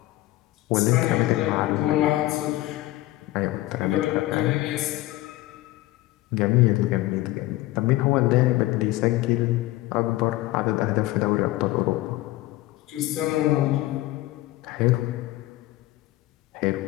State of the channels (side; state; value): right; quieter; 17.5 dB